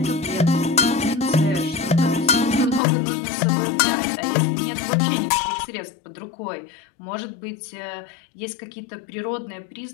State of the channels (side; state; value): right; drops out; at 2.8 s